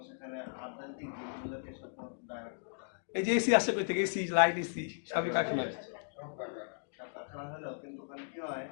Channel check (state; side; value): silent; right; digital silence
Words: সেখানে আধ্যাত্মিক জিনিসগুলোকে সম্পূর্ণ ডাইভার্ট করতে হয়। এই যে এসি আসছে কই থেকে? এসি, লাইট, এসি সবই কারখানায়। কারখানা হলো, কিন্তু ওখানে কি হয়,